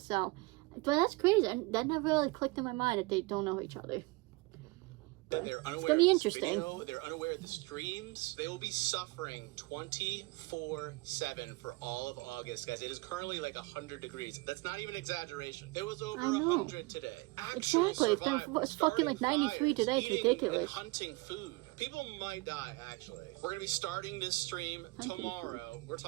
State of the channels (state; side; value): quieter; left; 24.5 dB